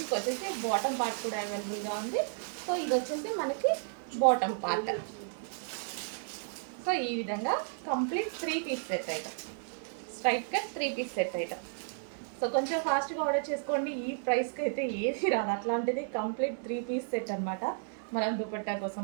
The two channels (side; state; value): left; silent; 56 dB below the other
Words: వచ్చేసి బాటమ్ పార్ట్ కూడా అవైలబుల్గా ఉంది. సో ఇది వచ్చేసి మనకి బాటమ్ పార్ట్. సో ఈ విధంగా complete 3 piece set item, straight cut 3 piece set item. So కొంచెం ఫాస్ట్గా ఆర్డర్ చేసుకోండి. ఈ ప్రైస్కి అయితే ఏది రాదు. అట్లాంటిది కంప్లీట్ 3 పీస్ సెట్ అనమాట. మనం దుపట్టా